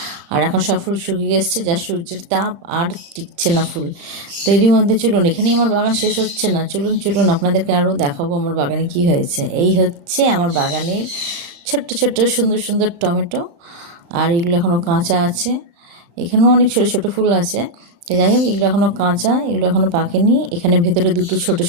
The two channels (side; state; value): left; late; 36 ms